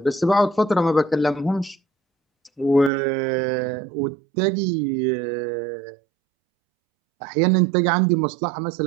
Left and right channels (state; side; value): drops out; left; at 2.9 s